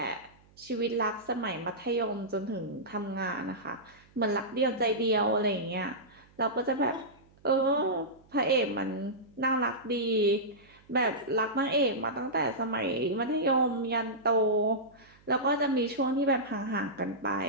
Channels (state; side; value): noise; right; hum, 29 dB below the sound